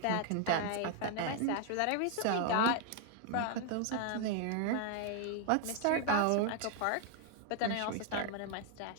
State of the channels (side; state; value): both; different; correlation 0.00